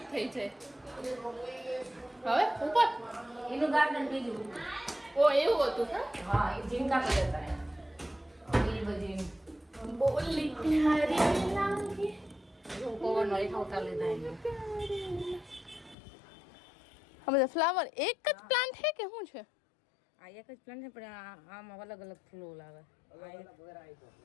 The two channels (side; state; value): right; drops out; at 16.0 s